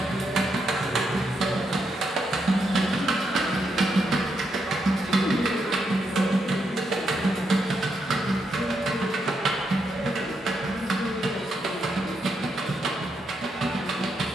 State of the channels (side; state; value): both; normal; correlation 0.81